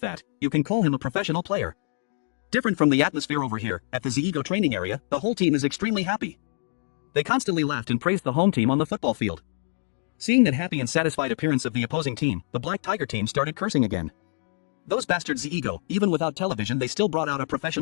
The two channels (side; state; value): right; silent; digital silence